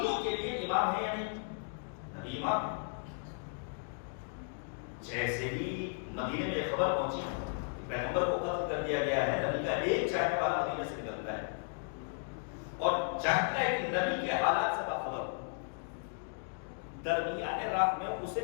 کے لیے امام ہے یا نہیں؟ نبی امام ہے. جیسے ہی مدینے میں خبر پہنچی کہ پیغمبر کو قتل کر دیا گیا ہے، نبی کا ایک چاہنے والا مدینے سے نکلتا ہے اور چاہتا ہے کہ نبی کے حالات سے باخبر ہو. درمیان رات میں اسے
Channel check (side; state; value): right; silent; 54 dB below the other